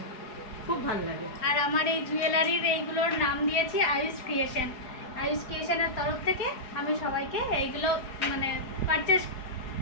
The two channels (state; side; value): late; right; 4.8 ms